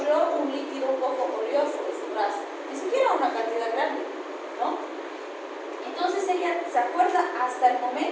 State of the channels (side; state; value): both; identical; correlation 1.00